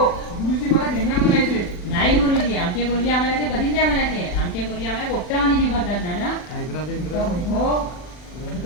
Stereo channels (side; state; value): right; late; 40 ms